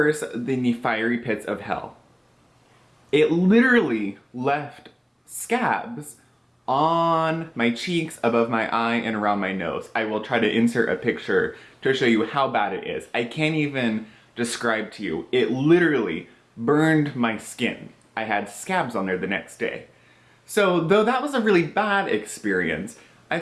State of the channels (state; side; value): identical; both; correlation 1.00